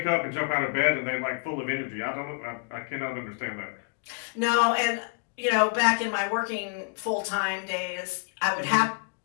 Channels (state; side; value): quieter; right; 37.5 dB